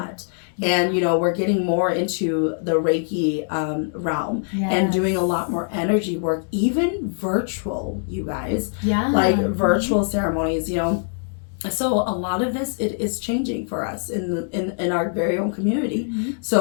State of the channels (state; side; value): silent; right; 64 dB below the other